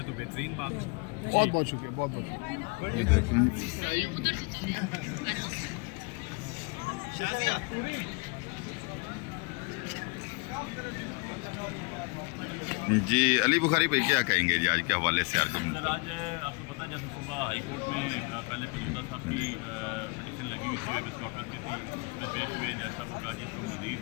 तो बेहतरीन बात। बहुत बहुत शुक्रिया, बहुत बहुत शाजिया जी। अली बुखारी भाई क्या कहेंगे जी आज के हवाले से? सर आज आपको पता है जैसे सुबह हाई कोर्ट में पहले पंजोता साहब की पिटीशन लगी हुई थी, वेबस कॉर्पस की थी, उसमें पेश हुए जैसा वो कहा जी इसको मजीद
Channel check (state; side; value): quieter; right; 29.6 dB